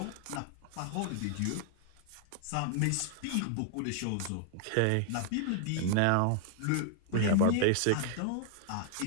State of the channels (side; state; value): both; different; correlation 0.00